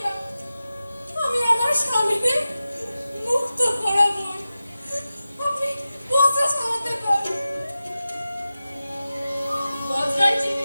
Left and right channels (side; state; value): both; inverted; correlation -0.94